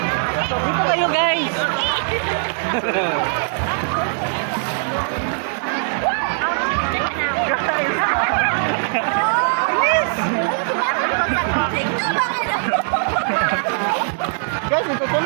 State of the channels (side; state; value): left; silent; 62 dB below the other